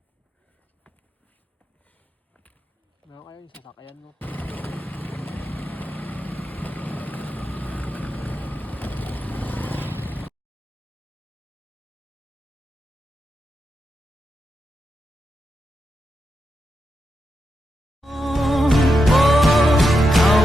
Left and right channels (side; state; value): both; normal; correlation 0.86